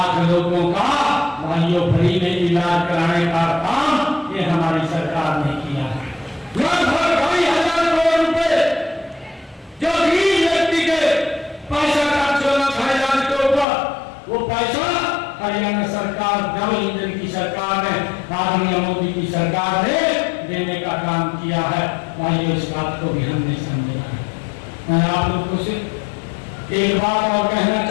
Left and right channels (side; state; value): right; drops out; at 13.7 s